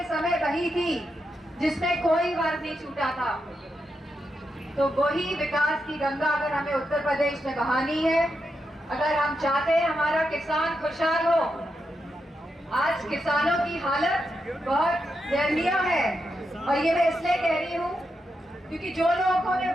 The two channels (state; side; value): normal; both; correlation 0.85